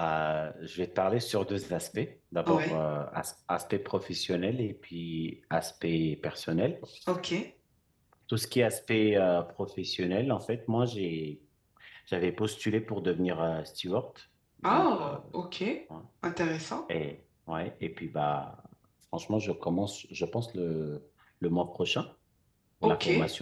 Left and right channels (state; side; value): identical; both; correlation 1.00